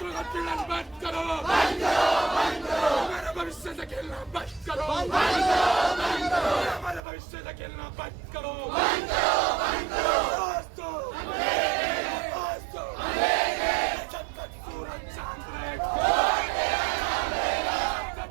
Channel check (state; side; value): drops out; left; at 7.0 s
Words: का पीड़न बंद करो, हमारे भविष्य से खेलना बंद करो, हमारे भविष्य से खेलना बंद करो। दोस्तों जब तक सूरज चांद रहेगा, जब